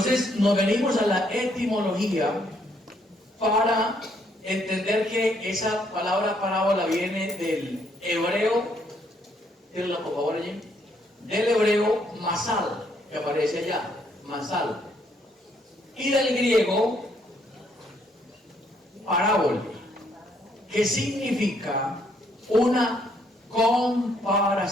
nos venimos a la etimología para entender que esa palabra parábola viene del hebreo, tírenla por favor allí, del hebreo masal, que aparece allá, masal, y del griego parábola, que significa una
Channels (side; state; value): both; normal; correlation 0.70